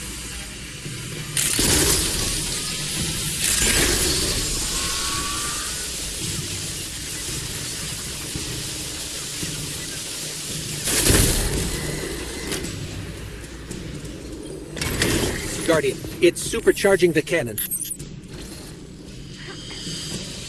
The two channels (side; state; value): both; identical; correlation 1.00